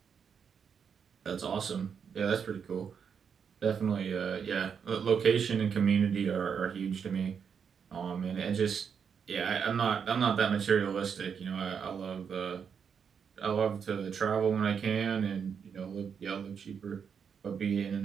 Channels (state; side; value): quieter; left; 6.9 dB